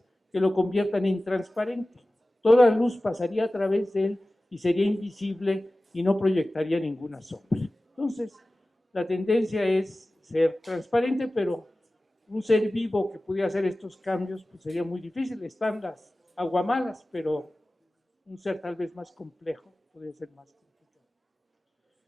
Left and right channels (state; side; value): normal; both; correlation 0.96